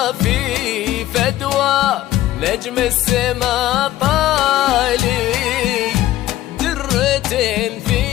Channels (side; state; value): right; quieter; 14.5 dB